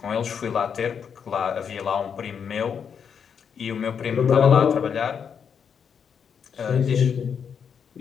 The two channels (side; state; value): right; quieter; 7.1 dB